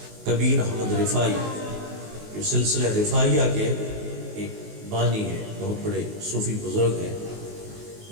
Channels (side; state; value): left; late; 19 ms